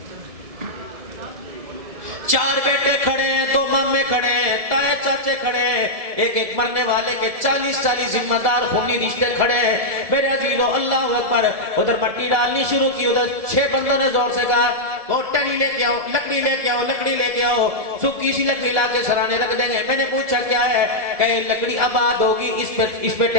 चार बेटे खड़े हैं, 2 मामे खड़े हैं, ताए चाचे खड़े हैं, एक एक मरने वाले के 40 जिम्मेदार खूनी रिश्ते खड़े हैं। मेरे अजीजों अल्लाह अकबर। उधर मट्टी डालनी शुरू की, उधर 6 बंदों ने जोर से कहा वो टनी लेके आओ, लकड़ी लेके आओ, लकड़ी लेके आओ। सूखी सी लकड़ी लाके सराने रख देंगे। मैंने पूछा क्या है? कहे लकड़ी आबाद होगी, इस पे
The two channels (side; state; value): left; late; 1.7 ms